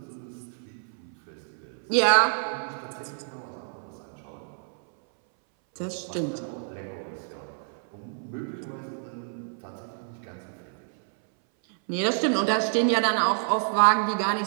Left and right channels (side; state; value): left; silent; 59 dB below the other